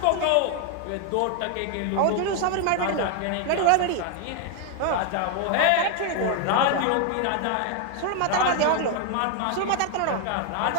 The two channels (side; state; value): both; different; correlation 0.01